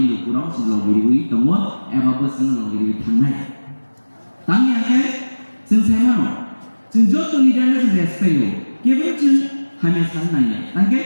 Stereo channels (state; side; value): inverted; both; correlation -1.00